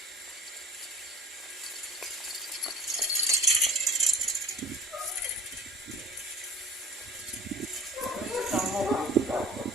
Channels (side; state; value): both; normal; correlation 0.44